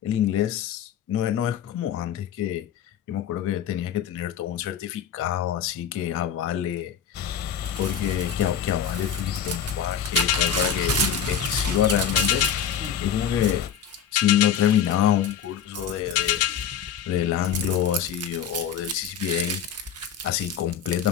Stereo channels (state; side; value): quieter; right; 8.2 dB